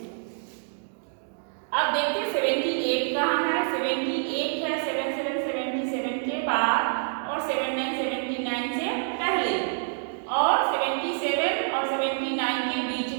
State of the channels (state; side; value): silent; left; digital silence